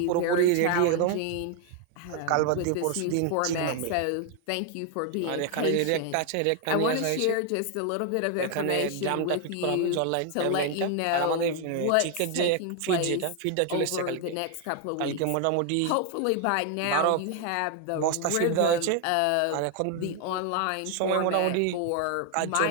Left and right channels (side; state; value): both; different; correlation 0.00